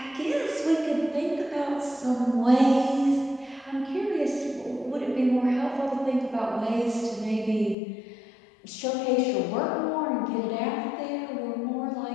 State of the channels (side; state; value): right; drops out; at 7.8 s